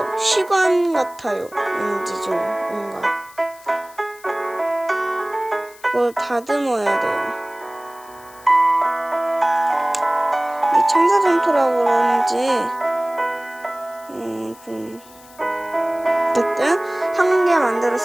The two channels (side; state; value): left; noise; hiss, 23 dB below the sound